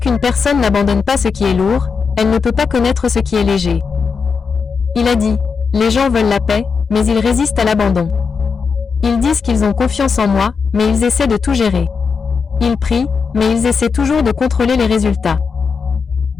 personne n'abandonne pas ce qui est lourd, elle ne peut pas connaître ce qui est léger. Il a dit, les gens veulent la paix, mais ils résistent à l'abandon. Ils disent qu'ils ont confiance en moi, mais ils essaient de tout gérer. Ils prient, mais ils essaient toujours de contrôler les résultats.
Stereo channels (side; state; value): right; quieter; 5.5 dB